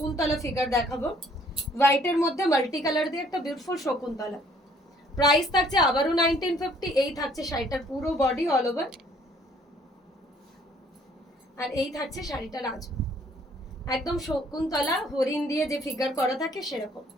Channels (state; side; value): normal; both; correlation 0.60